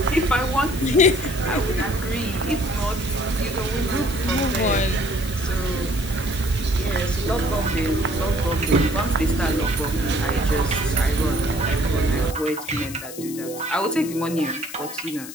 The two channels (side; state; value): left; noise; hiss, 12 dB below the sound